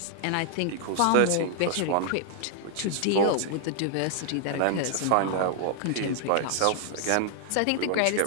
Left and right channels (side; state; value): both; different; correlation -0.01